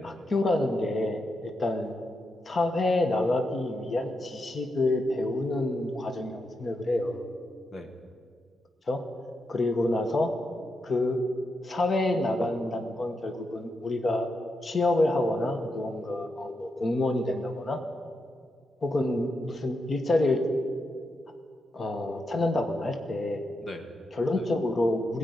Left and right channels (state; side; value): normal; both; correlation 0.85